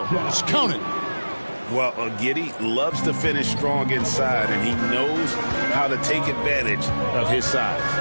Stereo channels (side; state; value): both; inverted; correlation -1.00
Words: Count it. Well, Giddy loves to finish strong inside, and he knows how to take advantage of his size.